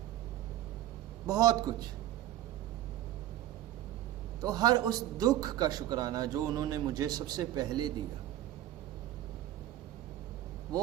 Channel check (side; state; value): left; quieter; 13.4 dB